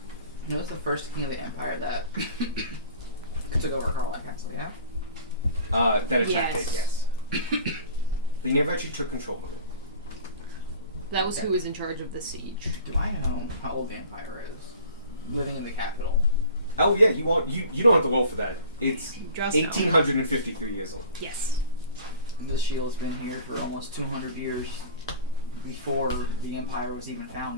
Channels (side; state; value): both; inverted; correlation -0.44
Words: You know, it's the first king of the empire that took over Carlisle Castle, yeah? That attacked it. Yes. Yes. They never actually took control of it. That was who was in charge of the siege. Do I know how old the empire is? Living in the capital. Oh yeah, you don't have to roll for that. It's Just know. 1,853 years old. Yes. The shield's been here for almost 200 years before the empire was even